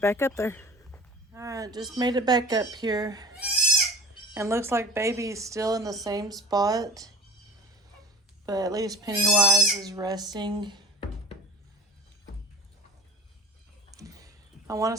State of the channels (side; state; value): both; normal; correlation 0.41